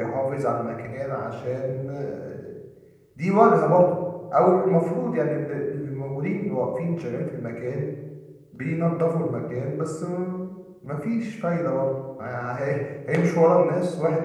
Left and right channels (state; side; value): identical; both; correlation 1.00